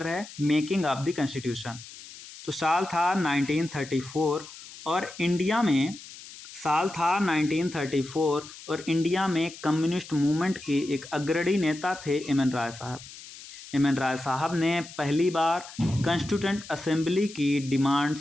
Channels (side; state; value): left; noise; hiss, 16 dB below the sound